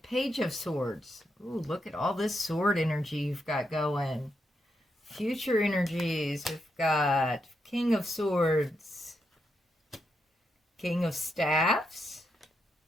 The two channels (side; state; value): both; normal; correlation 0.82